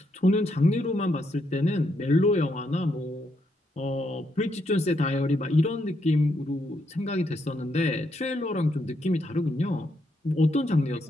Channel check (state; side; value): normal; both; correlation 0.78